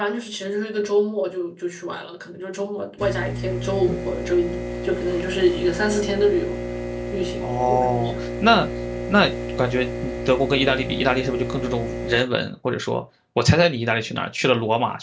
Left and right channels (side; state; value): both; identical; correlation 1.00